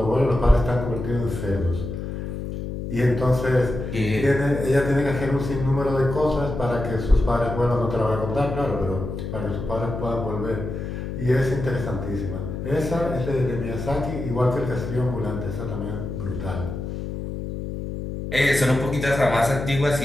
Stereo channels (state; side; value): noise; left; hum, 6 dB below the sound